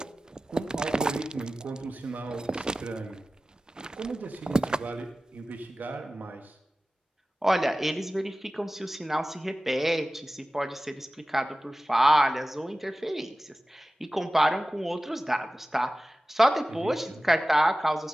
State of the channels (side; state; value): both; normal; correlation 0.96